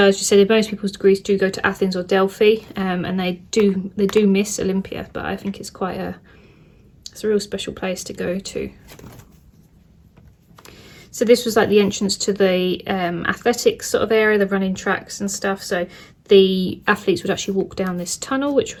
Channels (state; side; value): identical; both; correlation 1.00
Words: as you said, most people's degrees do go to Athens or Delphi, and they do miss Olympia, but I think it's it's a real special place to go to. So this was like the entrance to the athletics sort of area, the running tracks and stuff. So the athletes would actually walk down this tunnel, which I